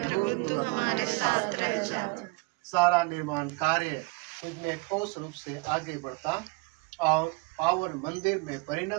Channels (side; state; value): left; quieter; 27.8 dB